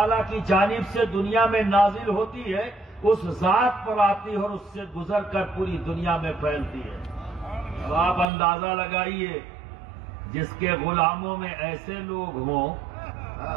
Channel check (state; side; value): drops out; left; at 8.2 s